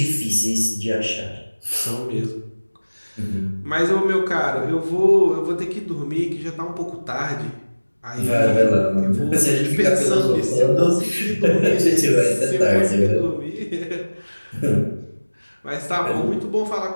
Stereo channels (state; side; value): inverted; both; correlation -1.00